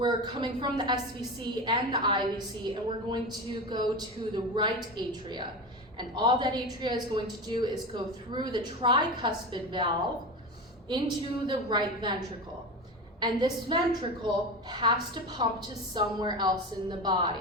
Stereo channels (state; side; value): normal; both; correlation 0.24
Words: coming from the SVC and the IVC, and we're going to go to the right atria. And all that atria is going to do is go through the tricuspid valve into the right ventricle. And this ventricle has to pump to somewhere else in the